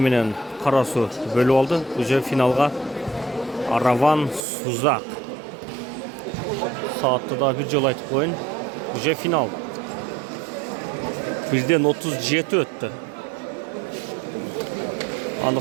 менен Карасу бөлүп алды. Уже финалга Араван Сузак. Саатты да бир жолу айтып коеюн. Уже финал. 1:37 өттү.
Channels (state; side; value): drops out; left; at 4.5 s